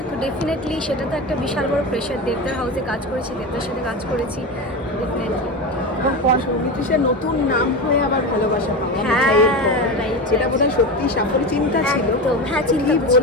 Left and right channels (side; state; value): both; normal; correlation 0.22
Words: তো ডেফিনেটলি সেটা তো একটা বিশাল বড় প্রেশার। দেবদার হাউসে কাজ করেছি, দেবদার সাথে কাজ করেছি, ডেফিনেটলি। এবং সৌমিত্রিষার নতুন নাম হয়ে আবার ভালোবাসা পাওয়া, হ্যাঁ যেটা বোধহয় সত্যি সাফল্য চিন্তা ছিল। হ্যাঁ, চিন্তা